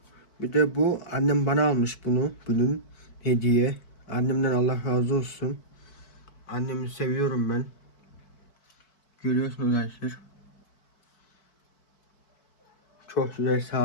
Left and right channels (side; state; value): right; late; 4.6 ms